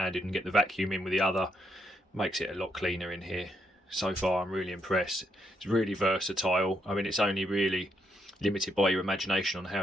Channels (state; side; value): normal; both; correlation 0.77